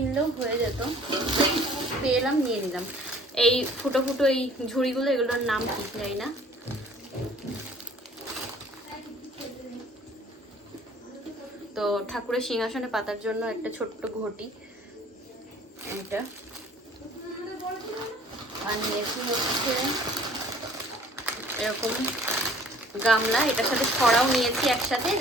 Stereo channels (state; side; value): normal; both; correlation 0.53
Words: হয়ে যেত, পেলাম নিয়ে নিলাম। এই ফুটো ফুটো এই ঝুড়িগুলো, এগুলোর নাম কি জানি না। তো ঠাকুরের সিংহাসনে পাতার জন্য একটা ছোট্ট ঘটি, এটা। আর নিয়েছি হচ্ছে এরকম গামলা, এটার সাথে ছড়াও নিয়েছি একসাথে,